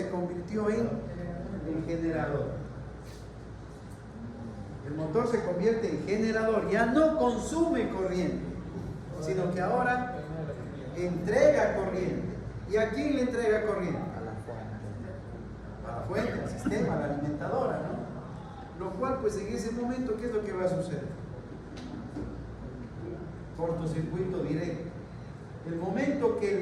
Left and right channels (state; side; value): identical; both; correlation 1.00